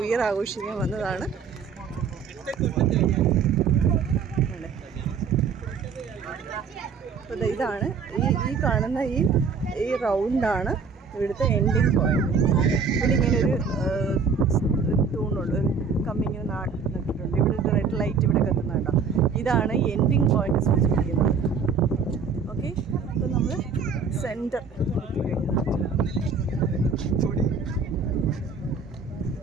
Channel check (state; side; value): quieter; left; 5.5 dB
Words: ഇയർ ആഘോഷിക്കാൻ വന്നതാണ്. അപ്പോൾ ഇതാണ് ഈ കാണുന്ന ഈ റൗണ്ടാണ് ഇവിടുത്തെ എൻഡിങ് പോയിന്റ്. ഇവിടെ ഇങ്ങനെ ഒരു തൂണുണ്ട്, ഒരു കമ്പി ഇങ്ങനെ നട്ടിട്ടുണ്ട്. ഇവിടെ ഒരു റെഡ് ലൈറ്റ് ഇവിടെ കത്തുന്നുണ്ടോ. ഇതാണ് എൻഡിങ് പോയിന്റ് സൂചിപ്പിക്കുന്നത്. ഓക്കെ, അപ്പോൾ നമ്മൾ സെൻറ്റർ